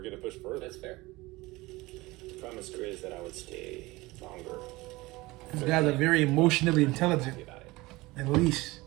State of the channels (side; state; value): left; quieter; 21.1 dB